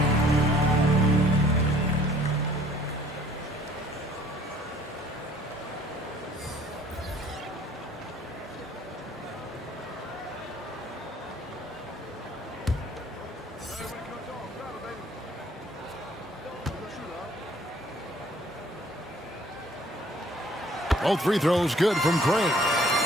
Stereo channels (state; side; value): normal; both; correlation 0.57